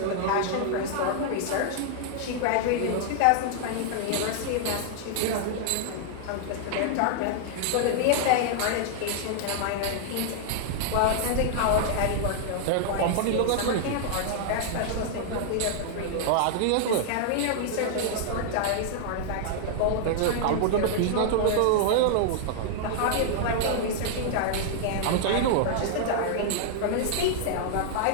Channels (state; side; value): different; both; correlation -0.01